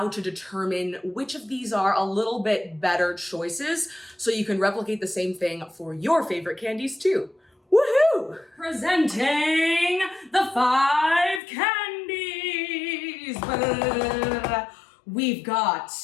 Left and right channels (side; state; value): right; drops out; at 11.4 s